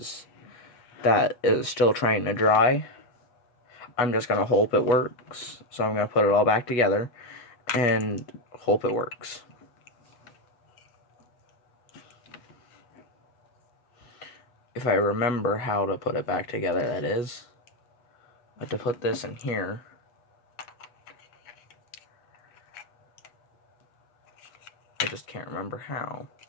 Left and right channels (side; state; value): right; late; 8.3 ms